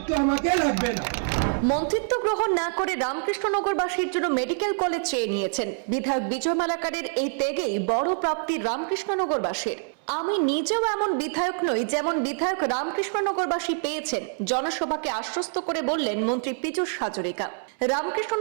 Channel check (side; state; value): left; silent; 61 dB below the other